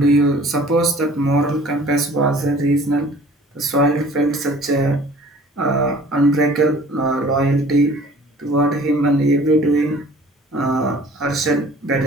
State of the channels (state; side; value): normal; both; correlation 0.49